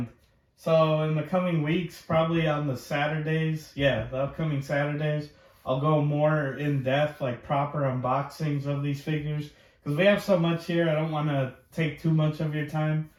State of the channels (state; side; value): identical; both; correlation 1.00